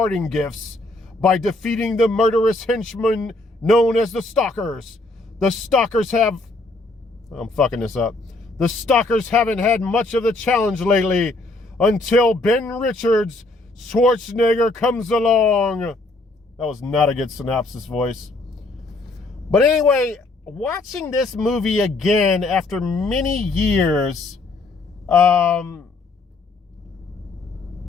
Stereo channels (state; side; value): quieter; right; 3.1 dB